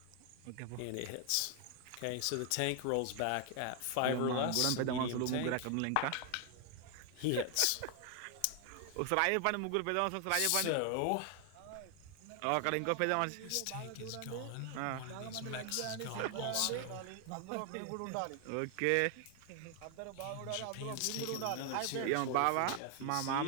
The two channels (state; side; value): different; both; correlation 0.00